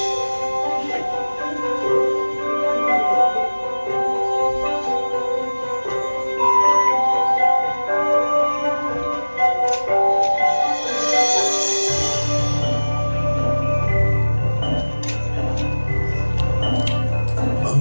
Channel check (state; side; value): inverted; both; correlation -1.00